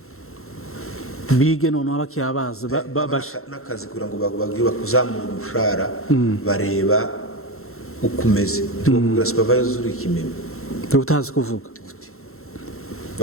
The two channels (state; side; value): late; right; 0.62 ms